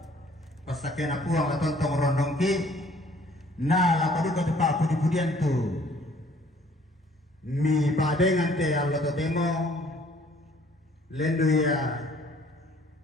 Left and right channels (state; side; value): normal; both; correlation 0.58